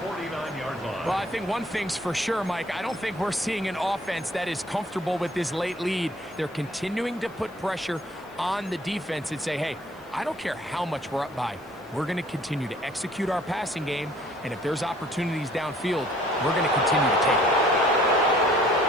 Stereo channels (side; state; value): left; noise; hiss, 29 dB below the sound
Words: line. Well, I think one thing's for sure, Mike. I don't think we're seeing an offense that is comfortable with this late lead. They're continuing to put pressure on the defense and say, hey, I don't care how much we're up by. We're going to continue to execute our passing game, and if there's opportunities downfield, we're going to continue to take it.